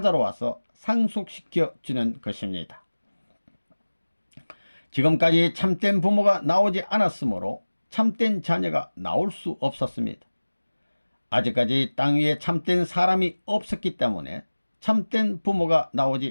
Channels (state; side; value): inverted; both; correlation -1.00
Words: 와서 상속시켜 주는 것입니다. 지금까지 참된 부모가 나오지 않았으므로 참된 자녀가 나올 수 없었습니다. 아직까지 땅 위에 참된 사람이 없었기 때문에 참된 부모가